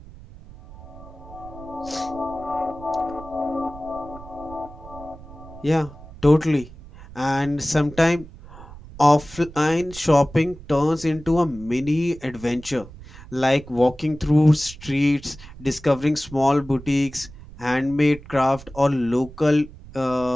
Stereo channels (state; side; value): noise; right; rumble, 17 dB below the sound